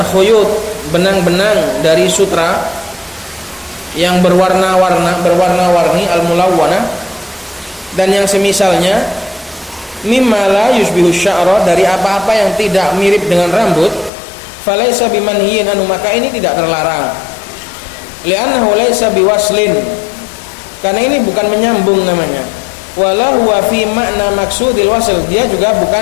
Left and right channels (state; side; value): drops out; right; at 14.1 s